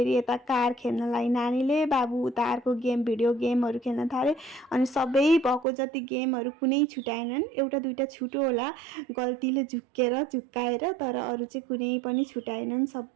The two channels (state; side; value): drops out; left; at 5.7 s